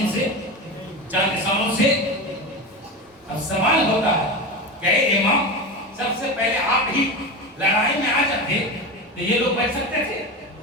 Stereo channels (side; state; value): both; normal; correlation 0.23